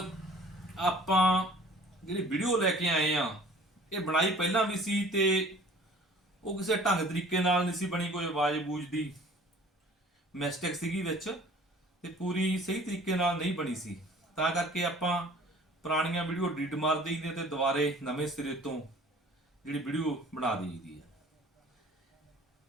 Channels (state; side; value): normal; both; correlation 0.50